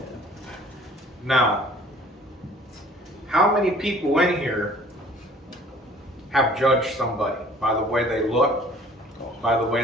Now, how many people in here have judged somebody by the way they look, by the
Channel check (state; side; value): normal; both; correlation 0.52